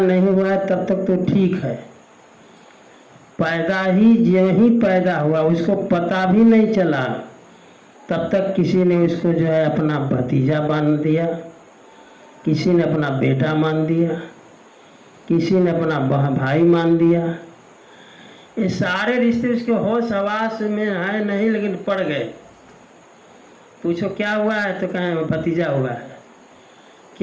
हुआ है तब तक तो ठीक है। पैदा ही जो ही पैदा हुआ, उसको पता भी नहीं चला, तब तक किसी ने उसको जो है अपना भतीजा मान दिया, किसी ने अपना बेटा मान दिया, किसी ने अपना भाई मान दिया। ये सारे रिश्ते उसके होश हवास में है नहीं, लेकिन पड़ गए। पूछो क्या हुआ है तो कहें भतीजा हुआ है,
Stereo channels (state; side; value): identical; both; correlation 1.00